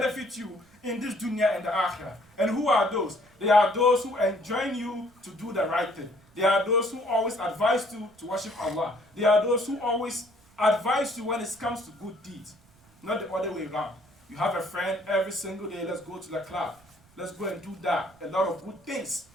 you in this dunya and the akhirah. And who are those? They are those who enjoin you to do the right thing. They are those who always advise you to worship Allah. They are those who always advise you when it comes to good deeds. Not the other way around. You have a friend every single day, let's go to the club. Let's go and do that. A lot of good things.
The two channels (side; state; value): right; noise; rumble, 30 dB below the sound